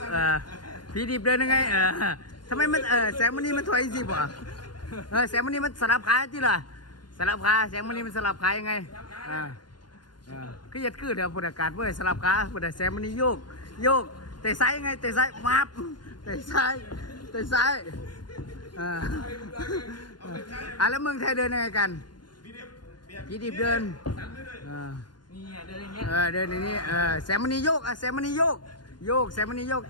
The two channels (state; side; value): late; right; 0.71 ms